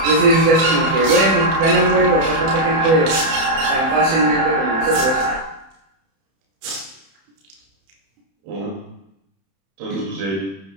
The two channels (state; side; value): late; left; 31 ms